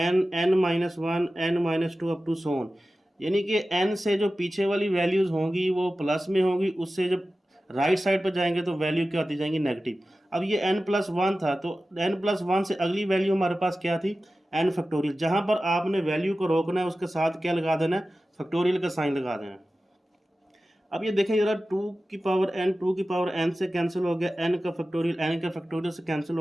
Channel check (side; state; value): both; normal; correlation 0.95